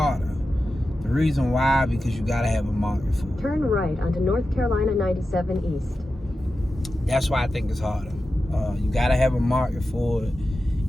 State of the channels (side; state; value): both; normal; correlation 0.92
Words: The reason why, because you gotta have a market for it. Turn right onto North Carolina 97 East. That's why I think it's harder. You gotta have a market for it.